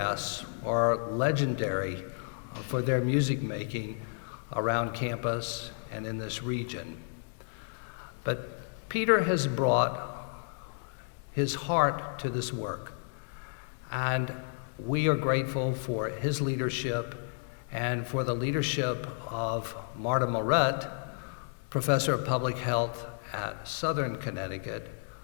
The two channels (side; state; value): right; silent; digital silence